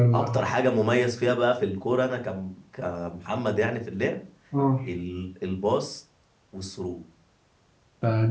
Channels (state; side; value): identical; both; correlation 1.00